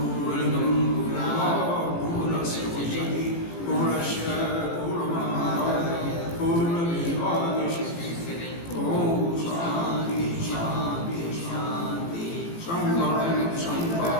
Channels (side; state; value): right; late; 18 ms